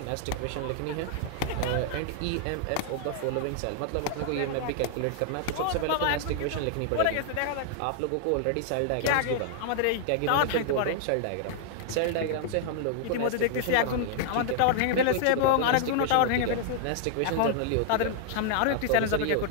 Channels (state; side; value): different; both; correlation 0.00